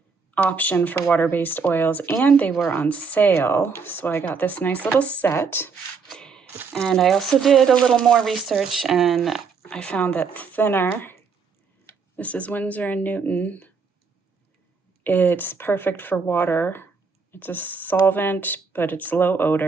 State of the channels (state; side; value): quieter; left; 5.3 dB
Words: option for water-based oils, and they were on sale. So I got this nice little set. And I also did a little more research, and I found that thinner, this is Winsor & Newton, it's perfect for water. It's a solvent, but it's low